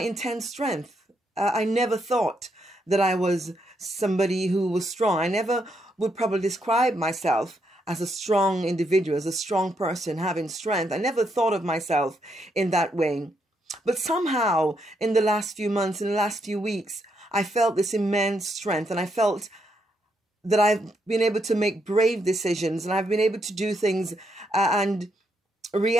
strength. I never thought that I was somebody who was strong. I never would probably describe myself as a strong individual, as a strong person having strength. I never thought of myself in that way. But somehow in the last few months, in the last few weeks, I felt this immense strength, and I felt that I've been able to make brave decisions, and I've been able to do things and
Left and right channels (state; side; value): normal; both; correlation 0.78